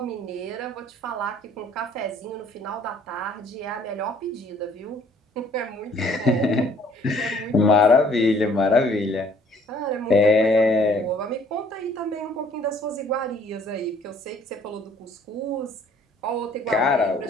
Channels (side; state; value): both; normal; correlation 0.59